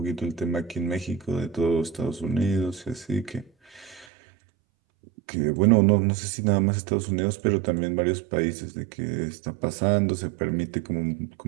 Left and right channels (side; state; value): left; drops out; at 4.0 s